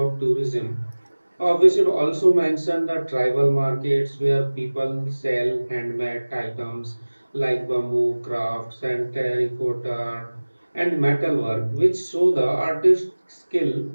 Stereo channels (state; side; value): inverted; both; correlation -1.00